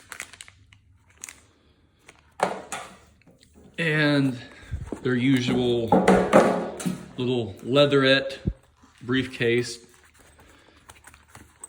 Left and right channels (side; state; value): both; identical; correlation 1.00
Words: And their usual little leatherette briefcase.